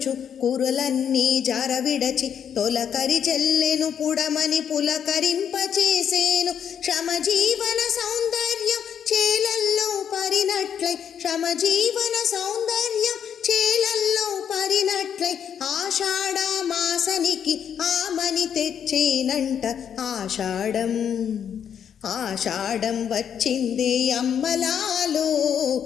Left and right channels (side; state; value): right; quieter; 8.4 dB